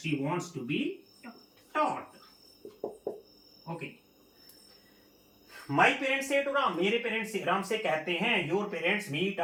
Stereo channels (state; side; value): identical; both; correlation 1.00